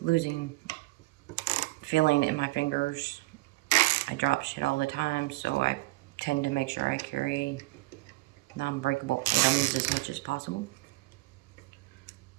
losing feeling in my fingers. I drop shit all the time, so I tend to make sure I carry non-breakable items as much as possible.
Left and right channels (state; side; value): quieter; left; 21.5 dB